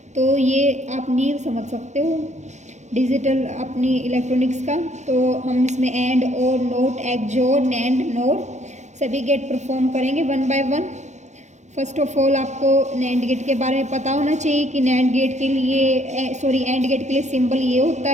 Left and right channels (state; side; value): late; left; 0.34 ms